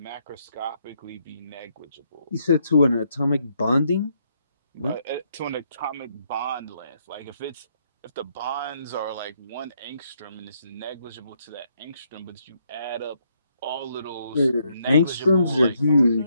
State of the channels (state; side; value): inverted; both; correlation -0.74